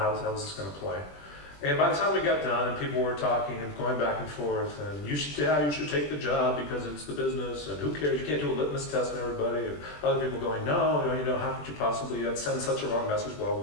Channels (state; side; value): late; right; 20 ms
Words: was this going to play? And by the time we got done and people were talking and going back and forth, and you should take the job because it's the business, and who cares, you can't do a litmus test on everybody, and other people going, no, how could you possibly send such a wrong message, blah, blah,